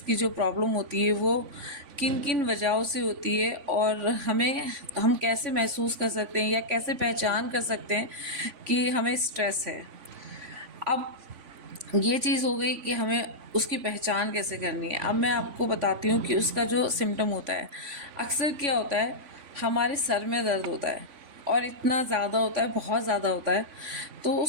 की जो प्रॉब्लम होती है वो किन किन वजहों से होती है, और हम कैसे महसूस कर सकते हैं या कैसे पहचान कर सकते हैं कि हमें स्ट्रेस है। अब ये चीज़ हो गई कि हमें उसकी पहचान कैसे करनी है। अब मैं आपको बताती हूँ कि उसका जो सिम्टम होता है, अक्सर क्या होता है, हमारे सर में दर्द होता है, और इतना ज़्यादा होता है, बहुत ज़्यादा होता है। तो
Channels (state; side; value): late; left; 3.5 ms